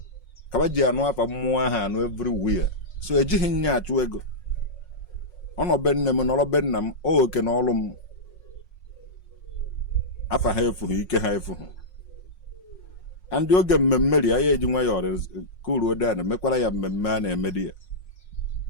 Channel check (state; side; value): late; right; 5.5 ms